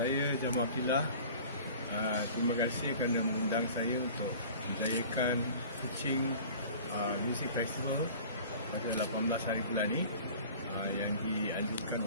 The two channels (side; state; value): both; inverted; correlation -0.43